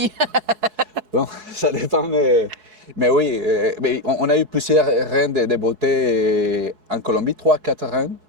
Bon, ça dépend, mais oui, mais on a eu plusieurs reines de beauté en Colombie, 3, 4 reines.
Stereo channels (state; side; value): late; left; 4.7 ms